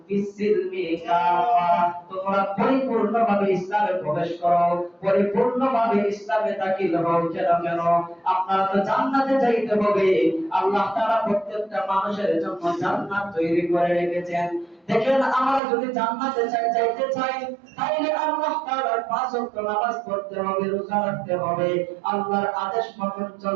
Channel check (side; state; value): left; drops out; at 15.6 s